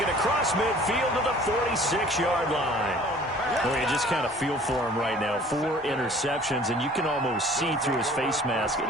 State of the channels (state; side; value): normal; both; correlation 0.51